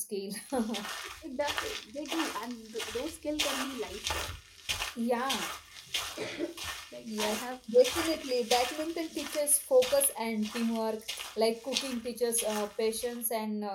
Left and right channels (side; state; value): both; identical; correlation 1.00